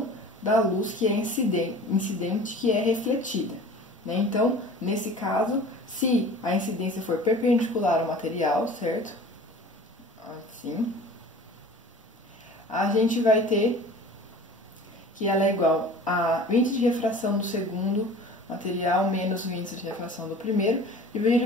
da luz que é incidente, que é refletida, né? Então, nesse caso, se a incidência for perpendicular ao material, certo? Assim, a gente vai ter que ela é igual a o índice de refração do segundo material menos o índice de refração do primeiro,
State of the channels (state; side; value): normal; both; correlation 0.43